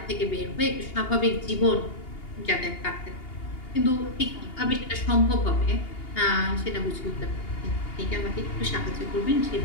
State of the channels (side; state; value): right; late; 2.8 ms